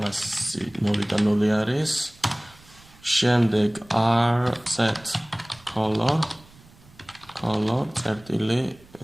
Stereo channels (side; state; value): right; noise; rumble, 25 dB below the sound